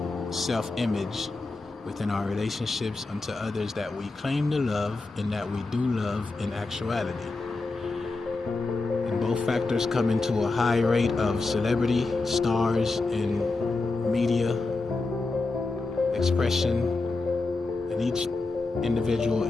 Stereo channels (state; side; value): quieter; right; 3.5 dB